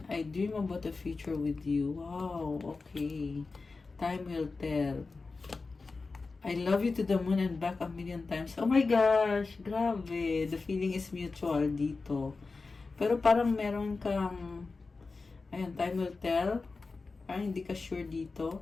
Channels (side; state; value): right; quieter; 4.0 dB